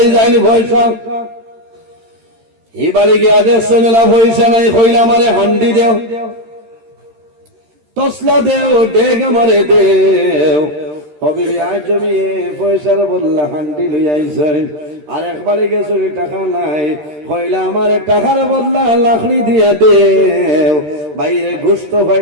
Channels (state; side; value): late; left; 13 ms